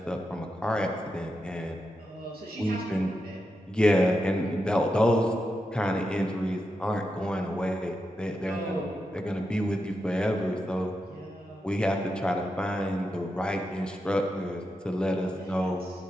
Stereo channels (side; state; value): both; normal; correlation 0.87